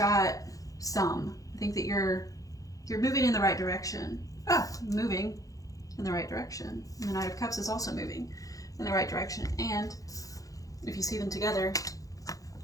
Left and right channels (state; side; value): late; right; 0.17 ms